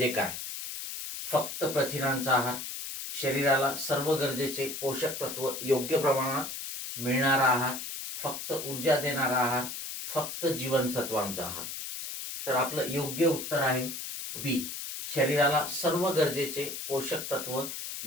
काय? फक्त प्रथिनांचा आहार, शरीराला सर्व गरजेचे पोषक तत्व योग्य प्रमाणात मिळणारा आहार, फक्त ऊर्जा देणारा आहार, फक्त जीवनसत्वांचा आहार. तर आपलं योग्य उत्तर आहे बी. शरीराला सर्व गरजेचे पोषक तत्व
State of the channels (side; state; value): left; noise; hiss, 7 dB below the sound